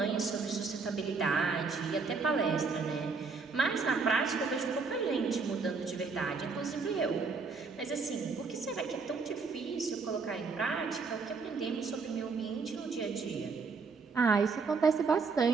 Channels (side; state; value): left; quieter; 4.7 dB